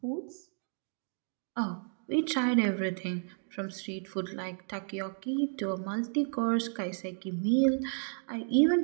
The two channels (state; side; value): silent; left; 56 dB below the other